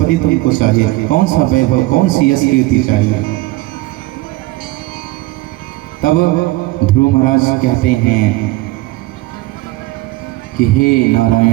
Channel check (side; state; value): left; quieter; 19.3 dB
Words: तुमको चाहिए, कौन सा वैभव, कौन सी यश कीर्ति चाहिए। तब ध्रुव महाराज कहते हैं कि हे